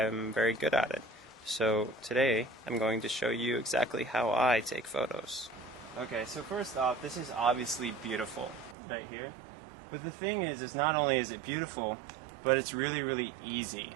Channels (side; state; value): left; drops out; at 8.8 s